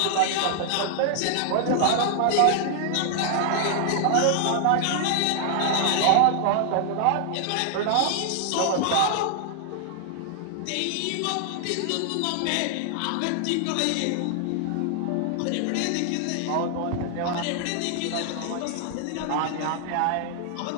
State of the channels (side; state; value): both; different; correlation -0.01